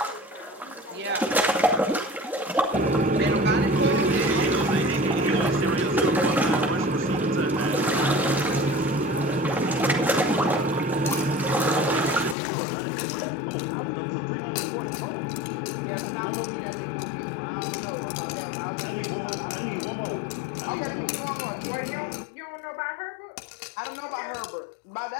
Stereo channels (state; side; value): drops out; right; at 12.4 s